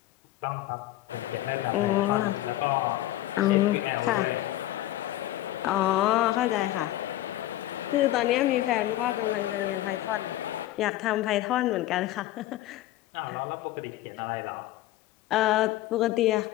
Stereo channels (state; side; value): quieter; right; 15.2 dB